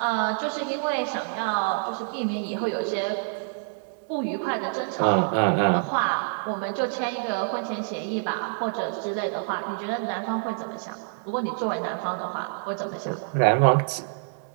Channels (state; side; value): silent; left; digital silence